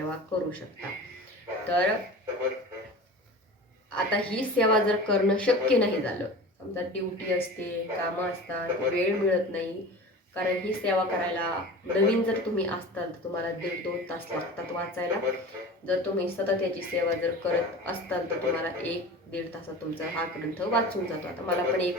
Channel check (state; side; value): normal; both; correlation 0.35